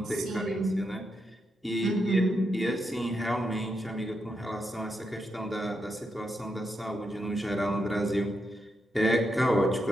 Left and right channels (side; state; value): both; normal; correlation 0.83